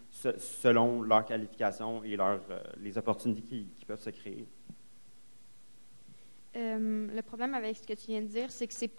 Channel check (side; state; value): both; inverted; correlation -1.00